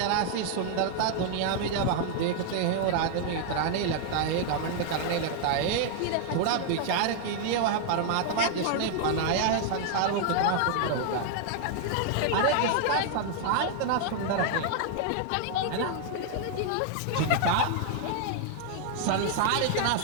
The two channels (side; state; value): both; different; correlation 0.00